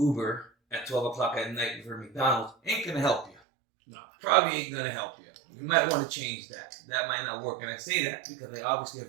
at 12 o'clock at night for McDonald's ain't gonna help you. No. Probably ain't gonna help you. You might want to change that. That might not work. And I say that because I obviously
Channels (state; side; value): drops out; left; at 3.4 s